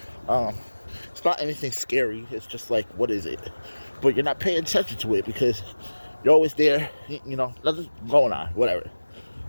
It's not anything scary. It's just like, what is it? But you're not paying attention to it because you're always there, you know, nothing's going on, whatever.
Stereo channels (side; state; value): both; inverted; correlation -1.00